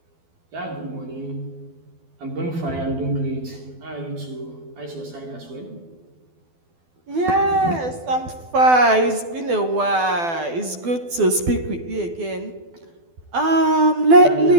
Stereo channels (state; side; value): late; left; 12 ms